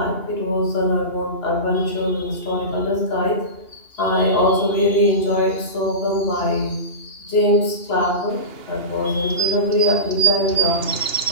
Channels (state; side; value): late; right; 2.8 ms